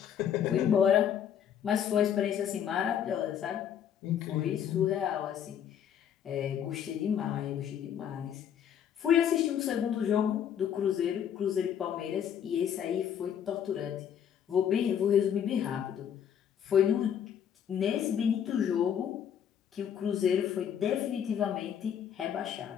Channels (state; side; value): quieter; right; 9.0 dB